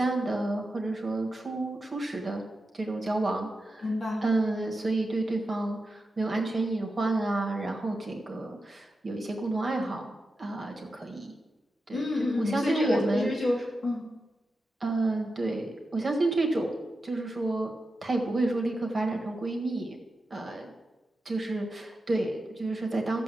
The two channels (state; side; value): normal; both; correlation 0.90